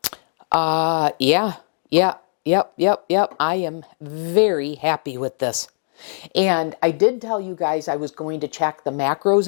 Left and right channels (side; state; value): right; silent; digital silence